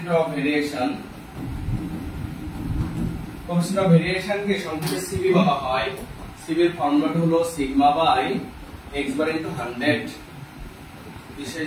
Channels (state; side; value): identical; both; correlation 1.00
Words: of variation. Coefficient of variation কে সংক্ষেপে সিবি বলা হয়। সিবি এর ফর্মুলাটা হলো sigma by x bar into 100। বিশেষ